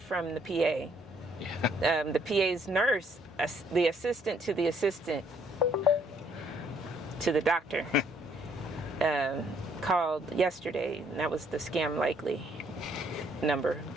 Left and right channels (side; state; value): both; normal; correlation 0.66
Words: from the PA. Yeah. The PA's nurse, the assistant to the assistant to the doctor, called yesterday, and that was the scam likely number.